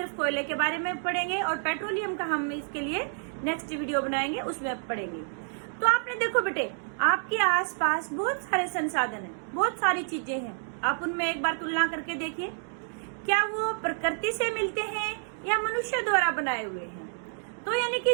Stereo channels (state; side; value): silent; left; digital silence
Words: कोयले के बारे में पढ़ेंगे और पेट्रोलियम का हम इसके लिए नेक्स्ट वीडियो बनाएंगे, उसमें पढ़ेंगे। तो आपने देखो बेटे, आपके आसपास बहुत सारे संसाधन है, बहुत सारी चीजें हैं। आप उनमें एक बार तुलना करके देखिए, क्या वो प्रकृति से मिलते हैं या मनुष्य द्वारा बनाए हुए हैं। तो यानी कि